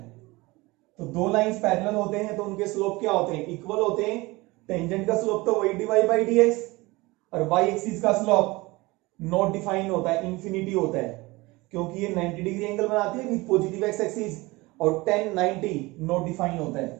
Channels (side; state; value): left; quieter; 22.4 dB